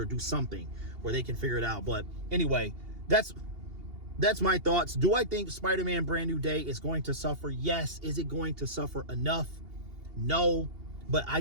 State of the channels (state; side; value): late; left; 2.8 ms